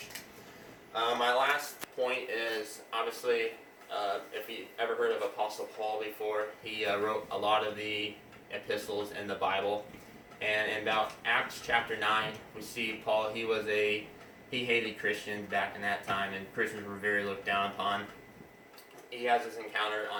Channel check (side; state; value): both; identical; correlation 1.00